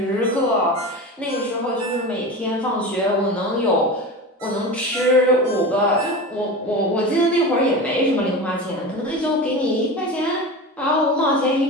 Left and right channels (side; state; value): both; normal; correlation 0.28